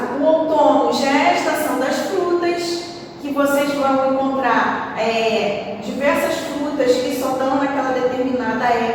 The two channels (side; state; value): both; identical; correlation 1.00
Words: o outono já é a estação das frutas, que vocês vão encontrar diversas frutas que só dão naquela determinada